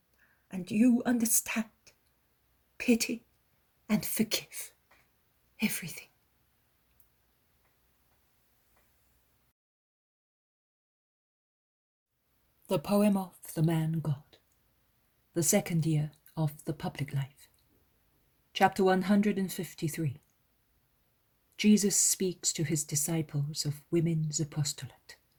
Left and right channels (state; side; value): identical; both; correlation 1.00